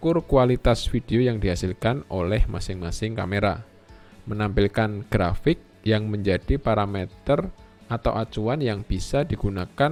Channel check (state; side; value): identical; both; correlation 1.00